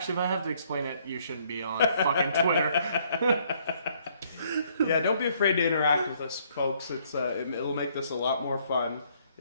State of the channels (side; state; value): both; inverted; correlation -0.66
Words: if I have to explain it, you shouldn't be on fucking Twitter. Yeah, don't be afraid to interact with us, folks. It'll make this a lot more fun